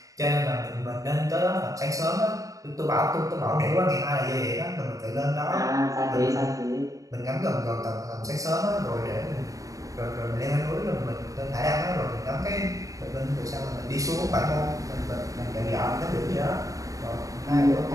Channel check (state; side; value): late; left; 0.16 ms